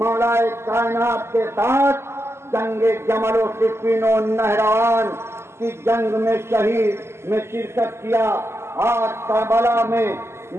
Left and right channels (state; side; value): late; left; 0.12 ms